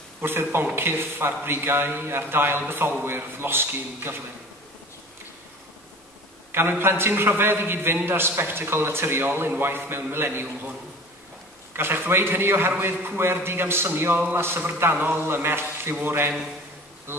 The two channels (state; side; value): normal; both; correlation 0.41